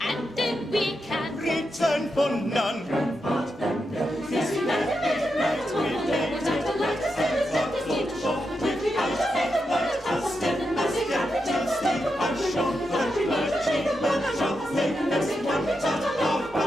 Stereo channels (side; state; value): both; normal; correlation 0.86